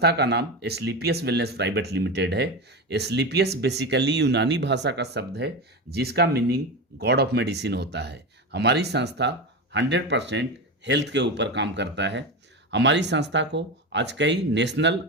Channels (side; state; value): both; normal; correlation 0.21